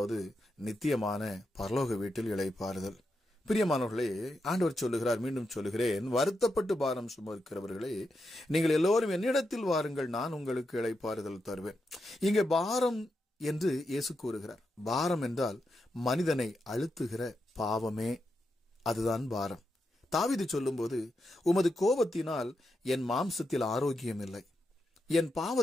நித்தியமான பரலோக வீட்டில் இளைப்பாறுதல். பிரியமானவர்களே, ஆண்டவர் சொல்லுகிறார், மீண்டும் சொல்லுகிறேன், வருத்தப்பட்டு பாரம் சுமக்கிறவர்களே, நீங்கள் எல்லோரும் என்னிடத்தில் வாருங்கள், நான் உங்களுக்கு இளைப்பாறுதல் தருவேன். இங்கே பாரம் என்று இயேசு கூறுகிறார். பாரம் என்றால் மனிதனை அழுத்துகிற பாவமே, அதுதான் பாரம். தாவீது சொல்லும்போது, உமது கோபத்தினால் என் மாம்சத்தில் ஆரோக்கியம் இல்லை, என்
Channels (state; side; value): normal; both; correlation 0.85